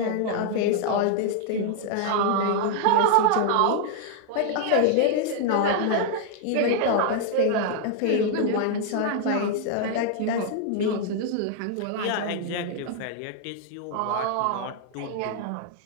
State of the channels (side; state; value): both; different; correlation 0.00